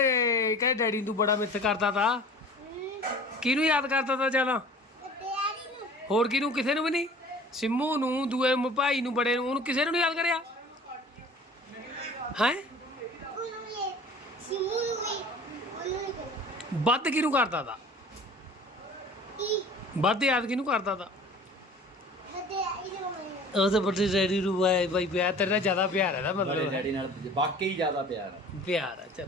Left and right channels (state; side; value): normal; both; correlation 0.44